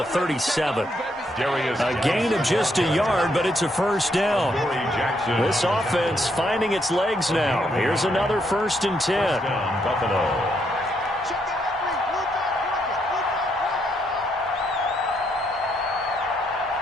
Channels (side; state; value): both; normal; correlation 0.75